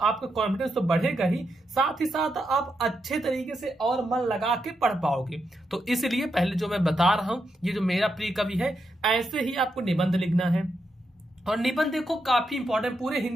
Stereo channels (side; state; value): both; normal; correlation 0.83